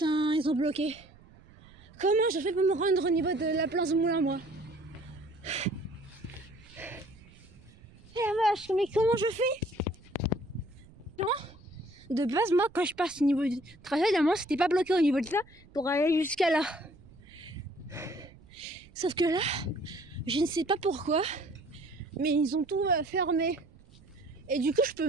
ils ont bloqué. Comment je fais pour me rendre au niveau de la place Moulin, moi? Eh la vache, mais comment je fais? De base, moi, quand je passe au niveau du trajet, normalement, c'était pas bloqué au niveau de ça pour aller jusqu'à là. Sauf que là, je ne sais pas pourquoi, mais ils ont tout fermé. Et du coup, je peux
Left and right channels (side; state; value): right; noise; rumble, 24 dB below the sound